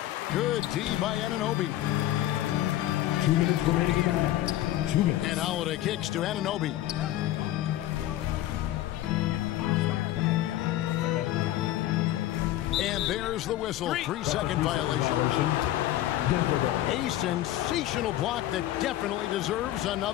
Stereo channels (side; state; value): right; quieter; 14.2 dB